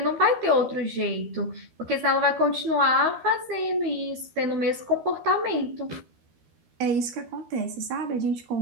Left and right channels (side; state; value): left; late; 13 ms